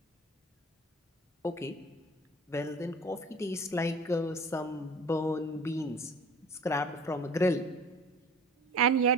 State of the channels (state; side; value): normal; both; correlation 0.43